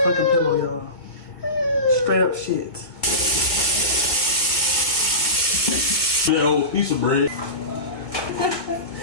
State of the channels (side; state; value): right; late; 1.7 ms